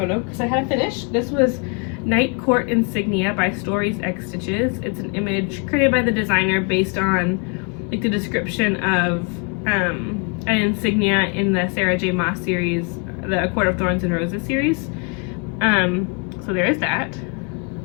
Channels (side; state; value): right; quieter; 34.8 dB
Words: because I had a finish. This was Night Court Insignia by Stories X Stitches. It's an image created by the designer based on like the description of an insignia in the Sarah J. Maas series, the A Court of Thorns and Roses series. So there is that.